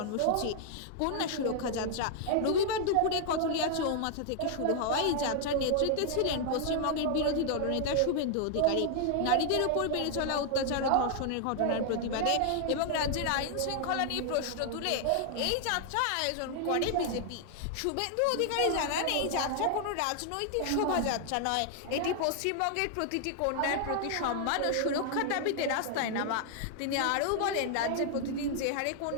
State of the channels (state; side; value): different; both; correlation 0.00